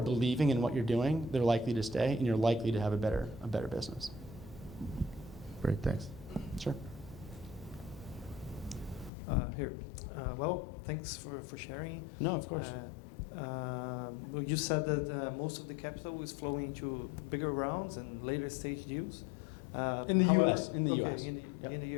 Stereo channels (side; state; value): right; drops out; at 9.1 s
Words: in what you're doing, they're likely to stay, and you're likely to have a better business. Great, thanks. Sure. Here. Well, thanks for sharing. No, of course. Well, you said that most of the capital is flowing into bigger rounds and later stage deals. In the US. In the okay, US. In